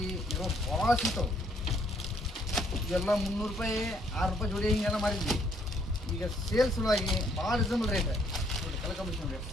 ಇರೋ ಭಾಳ ಸಿಗ್ತಾವೆ. ಇವೆಲ್ಲ 300 ರೂಪಾಯಿ 6 ರೂಪಾಯಿ ಜೋಡಿ ಹಿಂಗೆಲ್ಲ ಮಾರಿದ್ವಿ. ಈಗ ಸೇಲ್ಸ್ ಸಲುವಾಗಿ ಭಾಳ ರೀಸನಬಲ್ ರೇಟ್ ನೋಡಿ. ಕಲರ್ ಕಾಂಬಿನೇಷನ್ ರೇಟ್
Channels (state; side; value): normal; both; correlation 0.67